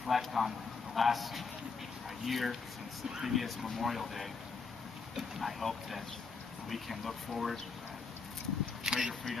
on the last year since the previous Memorial Day, I hope that we can look forward to greater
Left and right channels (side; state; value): right; quieter; 4.8 dB